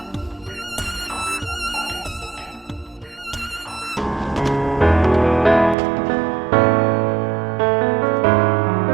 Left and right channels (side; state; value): left; drops out; at 5.8 s